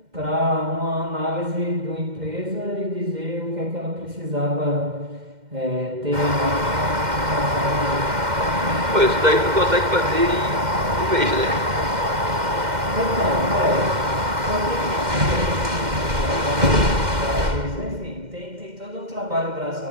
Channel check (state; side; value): late; left; 2.1 ms